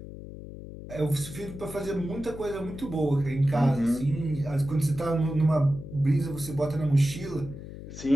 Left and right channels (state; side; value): noise; left; hum, 12 dB below the sound